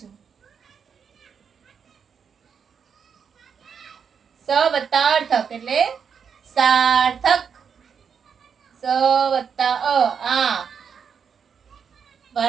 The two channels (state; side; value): quieter; left; 6.8 dB